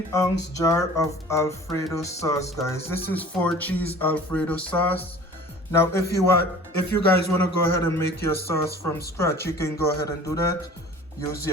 jar of Alfredo sauce, guys. This is 4-cheese Alfredo sauce. Now if you guys want to go ahead and make your sauce from scratch, you can go ahead and do that. Use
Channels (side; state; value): both; normal; correlation 0.45